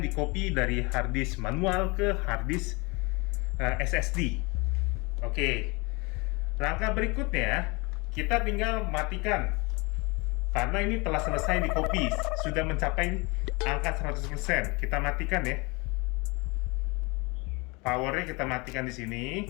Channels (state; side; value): quieter; right; 27.2 dB